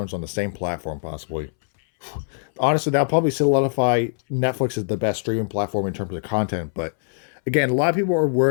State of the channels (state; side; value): silent; right; 64 dB below the other